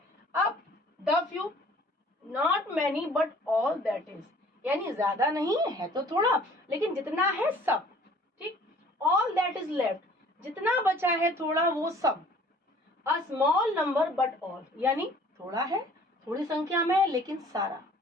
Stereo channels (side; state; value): both; normal; correlation 0.53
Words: अब the few, not many but all that is, यानी ज्यादा नहीं है तो थोड़ा, लेकिन जितना है सब। ठीक, ऑल दैट इज लेफ्ट, जितना बचा है थोड़ा, वो सब। A small number but all, यानी थोड़ा है, थोड़ी संख्या में है, लेकिन सारा।